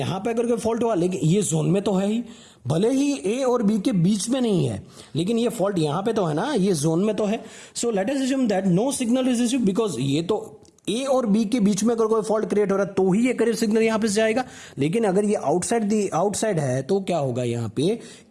पे अगर कोई फॉल्ट हुआ, लेकिन ये जोन में तो है ही, भले ही ए और बी के बीच में नहीं है, लेकिन ये फॉल्ट यहां पे तो है ना, ये जोन में तो है. So let us assume that no signal is received, because ये तो ए और बी के बीच में अगर कोई फॉल्ट क्रिएट हो रहा है तो ही ये करियर सिग्नल यहां पे जाएगा. लेकिन अगर ये आउटसाइड है तो क्या होगा यहाँ पे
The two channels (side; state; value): both; identical; correlation 1.00